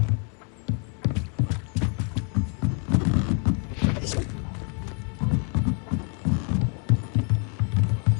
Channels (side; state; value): right; quieter; 37.9 dB